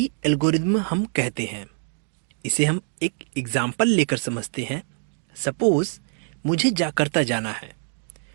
एल्गोरिदम हम कहते हैं। इसे हम एक एग्जाम्पल लेकर समझते हैं। सपोज मुझे जाकर्ता जाना है,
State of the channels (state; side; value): silent; left; 58 dB below the other